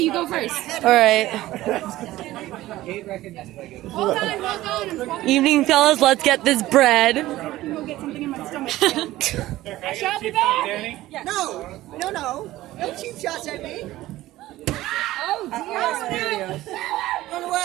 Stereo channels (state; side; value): quieter; left; 16.2 dB